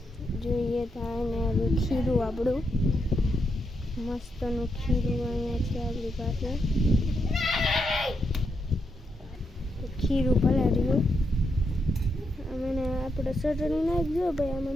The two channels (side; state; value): both; normal; correlation 0.82